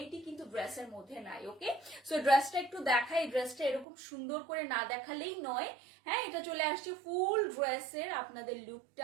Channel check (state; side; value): drops out; left; at 3.9 s